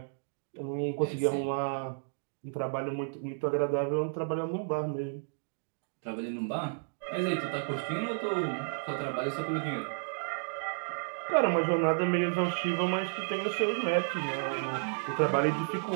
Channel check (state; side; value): silent; left; digital silence